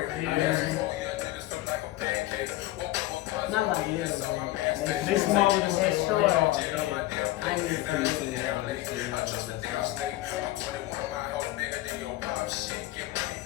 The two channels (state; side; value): quieter; right; 16.6 dB